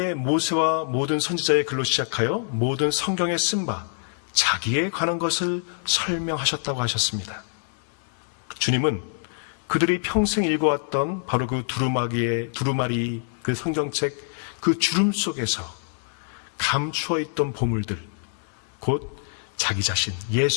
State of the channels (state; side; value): silent; right; 62 dB below the other